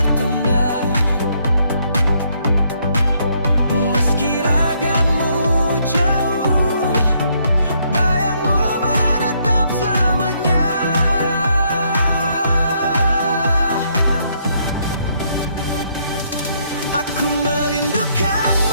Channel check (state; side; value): inverted; both; correlation -0.71